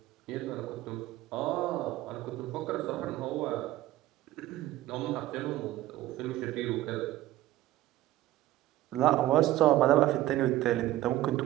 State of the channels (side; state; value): left; quieter; 15.1 dB